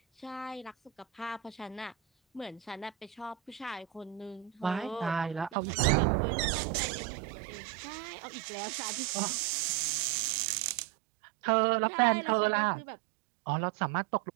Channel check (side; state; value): left; drops out; at 5.6 s